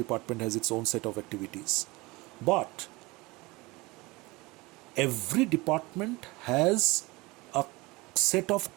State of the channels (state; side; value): quieter; left; 23.0 dB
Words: has its own set of activities. But every department has a set of